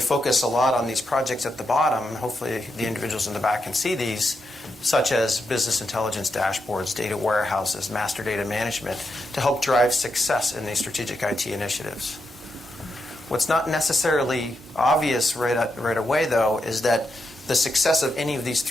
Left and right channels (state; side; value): normal; both; correlation 0.84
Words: a lot on these projects at the bottom. Hopefully the individuals in the back can see these, such as business intelligence dashboards, data warehouses, master data management, to help drive success in these strategic IT initiatives. What's not necessarily obvious right away, though, is that the success of any of these